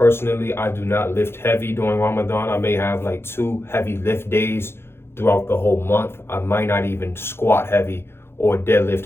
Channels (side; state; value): right; late; 0.12 ms